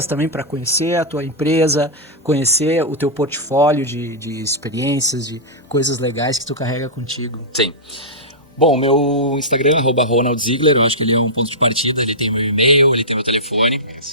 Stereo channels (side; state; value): both; normal; correlation -0.13